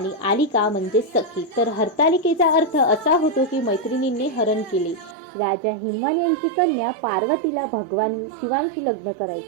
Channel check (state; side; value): drops out; left; at 5.2 s